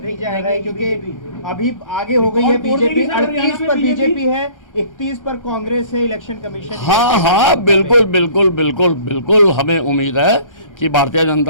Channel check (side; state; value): right; late; 1.3 ms